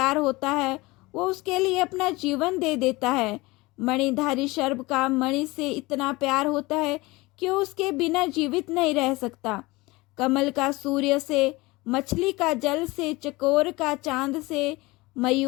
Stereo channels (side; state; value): right; quieter; 22.0 dB